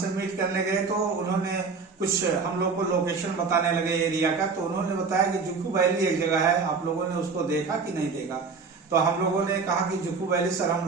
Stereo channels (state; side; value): quieter; left; 4.8 dB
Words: मीट करने गए तो उन्होंने कुछ हम लोग को लोकेशन बताने लगे एरिया का। तो उन्होंने बताया कि जुखू वैली एक जगह है, आप लोगों ने उसको देखा कि नहीं देखा। तो हम लोगों ने कहा कि जुखू वैली सर हम